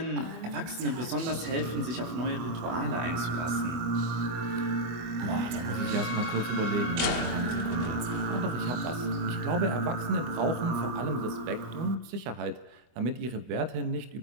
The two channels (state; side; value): late; left; 24 ms